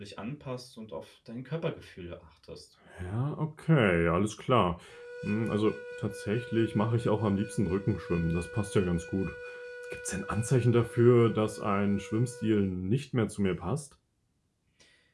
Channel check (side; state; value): both; identical; correlation 1.00